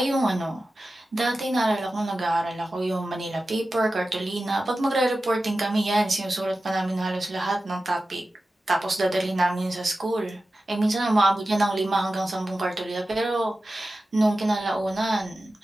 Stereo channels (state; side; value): normal; both; correlation 0.94